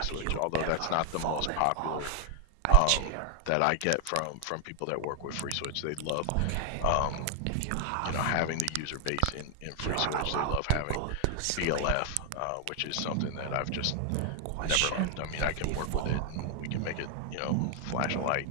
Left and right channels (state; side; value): different; both; correlation 0.00